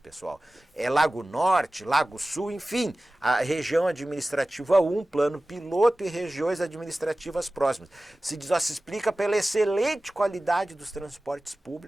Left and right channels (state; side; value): normal; both; correlation 0.97